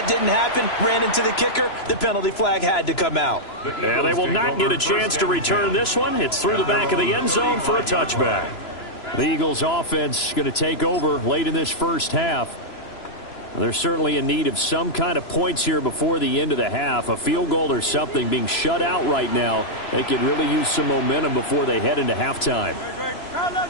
didn't happen. Ran into the kicker. The penalty flag had to come out. Yeah, they will not get a chance to return this one. It's through the back of the end zone for a touchback. The Eagles offense going to take over late in this first half. They're certainly in need of some kind of points here before the end of the half. A field goal or something, being shut out right now. They could really use some momentum before they head into halftime.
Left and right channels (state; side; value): late; right; 3.0 ms